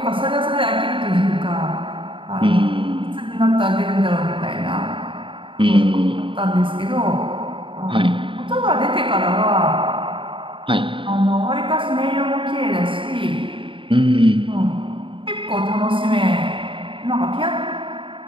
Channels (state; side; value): late; left; 0.25 ms